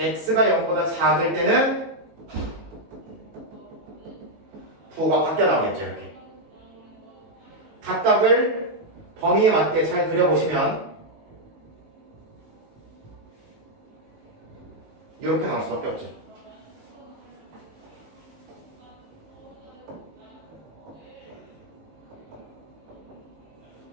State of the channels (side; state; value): left; late; 19 ms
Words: 0보다 작을 때는 부호가 바뀌어 나오겠죠. 이렇게 각각을 범위에 맞게 잘 그려보시면 이렇게 나올 수밖에 없죠.